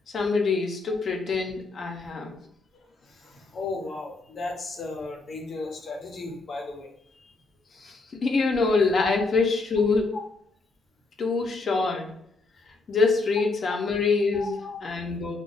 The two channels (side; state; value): right; quieter; 3.6 dB